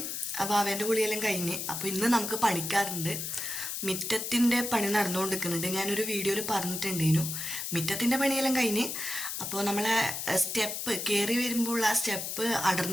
അവൻ്റെ കുളിയെല്ലാം കഴിഞ്ഞ്. അപ്പോൾ ഇന്ന് നമുക്ക് പണിക്കാറുണ്ട്. മിറ്റത്തിൻ്റെ പണി നടന്നുകൊണ്ടിരിക്കുന്നുണ്ട്. ഞാനൊരു വീഡിയോയിൽ പറഞ്ഞിട്ടുണ്ടേനു. മിറ്റത്തിൻ്റെ പണിയെല്ലാം കഴിഞ്ഞ്. അപ്പോൾ നമ്മളെ സ്റ്റെപ്പ് കയറി വരുമ്പോൾ ആ സ്റ്റെപ്പ്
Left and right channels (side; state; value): left; noise; hiss, 4 dB below the sound